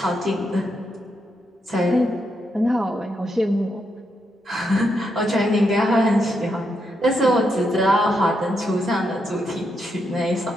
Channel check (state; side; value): normal; both; correlation 0.81